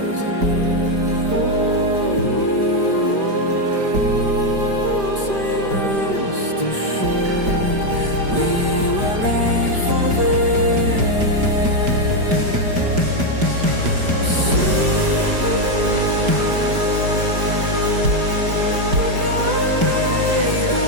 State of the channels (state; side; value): late; left; 5.0 ms